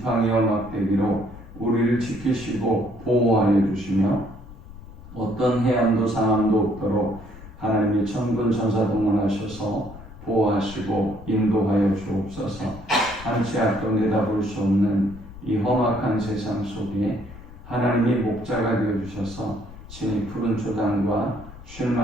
막대기로 우리를 지키시고 보호하여 주시며 어떤 해함도 상함도 없도록 하나님의 천군 천사 동원하셔서 보호하시고 인도하여 주옵소서. 한치 앞도 내다볼 수 없는 이 험악한 세상 속에 하나님이 목자가 되어주셔서 친히 푸른 초당과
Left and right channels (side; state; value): left; noise; rumble, 17 dB below the sound